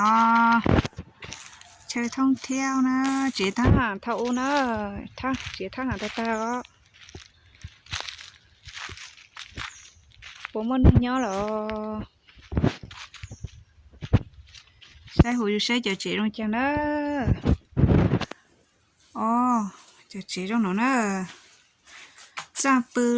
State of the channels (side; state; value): both; identical; correlation 1.00